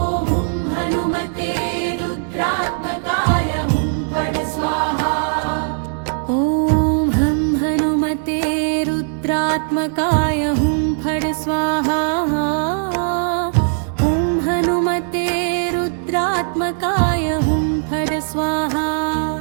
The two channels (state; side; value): silent; left; digital silence